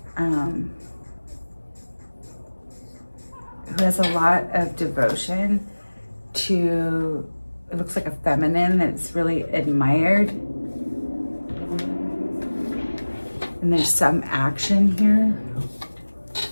Who has a lot of devotion to, it looks like a feminine that's really admired. And there's some action here.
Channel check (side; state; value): both; inverted; correlation -1.00